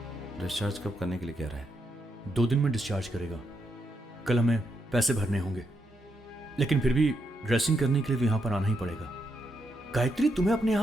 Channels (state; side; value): normal; both; correlation 0.81